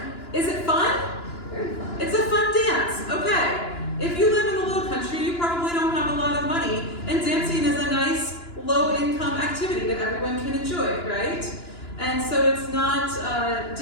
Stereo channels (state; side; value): late; right; 2.9 ms